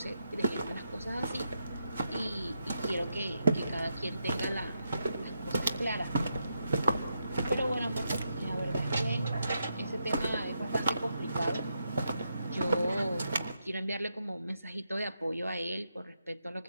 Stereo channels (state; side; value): inverted; both; correlation -0.83